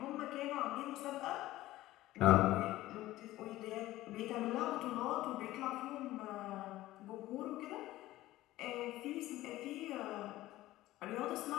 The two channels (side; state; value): right; quieter; 16.2 dB